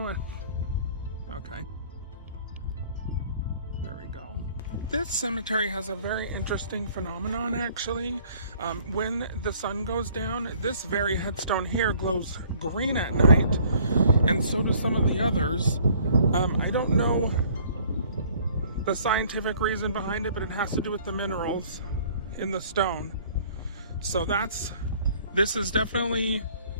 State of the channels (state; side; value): inverted; both; correlation -0.56